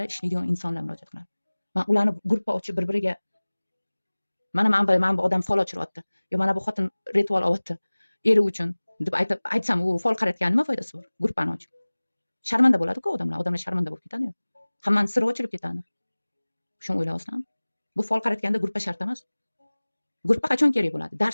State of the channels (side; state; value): both; inverted; correlation -1.00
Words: ishlaydigan insonlar murojaat qiladi. Men ularni guruhga ochib bir-biriga mana bu odam fol ochiryapti. Yo mana bu xotin ritual olyapti. Eri uchun deb aytsam, u fol qaratgan nima foydasi bor? Guruhni ochib. Sharmanda bo'ladi-ku odamlar sharmanda bo'lib ketadi-yu. Hammaning siri ochilib ketadi. Shuni o'ylayapsizlarmi? Bu fol qaratganda guruhga shart emas. Guruhga qachon kerak bo'ladi?